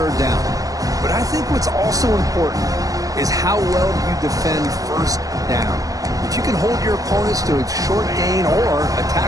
down? But I think what's also important is how well you defend first down. If you can hold your opponents to a short gain or a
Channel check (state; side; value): late; left; 0.17 ms